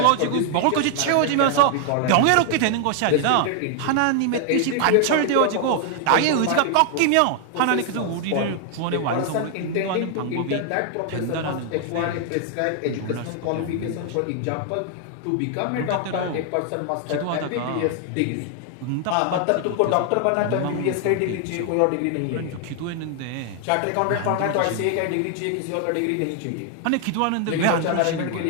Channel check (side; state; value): both; different; correlation 0.00